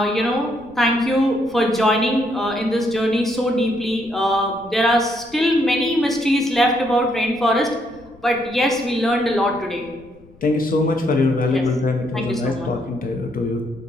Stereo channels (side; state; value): left; noise; rumble, 26 dB below the sound